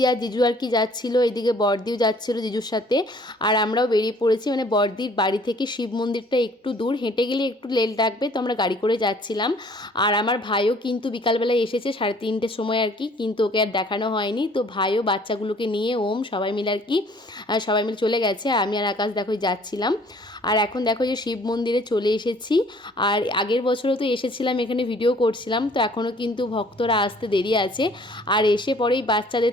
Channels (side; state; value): both; normal; correlation 0.56